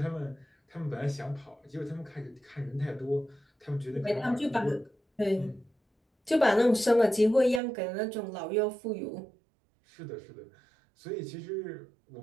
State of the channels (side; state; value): left; drops out; at 7.6 s